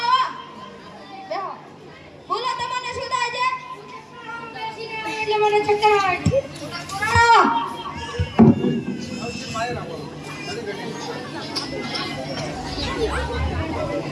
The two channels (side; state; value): both; identical; correlation 1.00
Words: બેહો. બોલો તમને શું થાય છે? બેસીને આવે એટલે મને ચક્કર આવે છે. આવો.